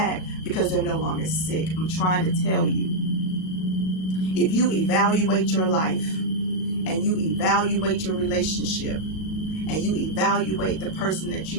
because they're no longer sick. I'm trying to tell you, if you evaluate your life and you evaluate your relationship and you evaluate the person that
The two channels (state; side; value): late; right; 37 ms